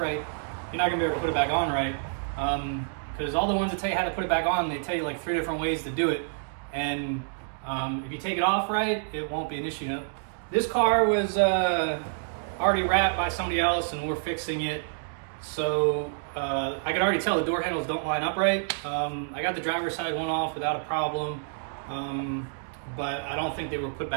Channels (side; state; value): left; silent; digital silence